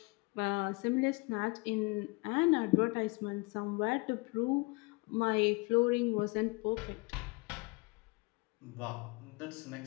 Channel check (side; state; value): right; quieter; 26.7 dB